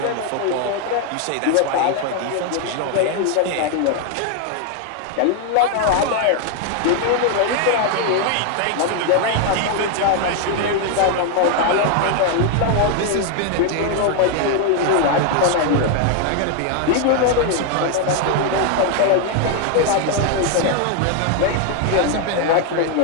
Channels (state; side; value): different; both; correlation 0.00